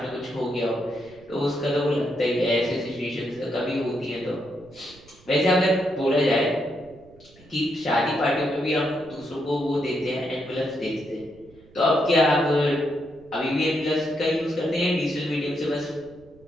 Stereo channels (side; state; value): right; noise; rumble, 25 dB below the sound